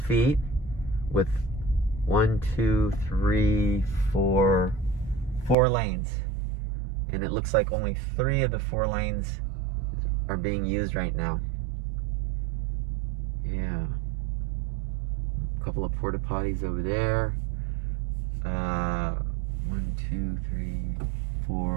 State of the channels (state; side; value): drops out; left; at 5.6 s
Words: feet with 1, 2, 3, 4 lanes. And it looks like only 3 of the 4 lanes are being used right now. Yeah. A couple of porta potties over there. 1, 2, 3,